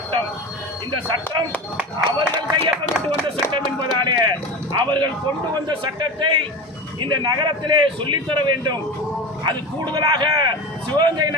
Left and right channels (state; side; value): normal; both; correlation 0.28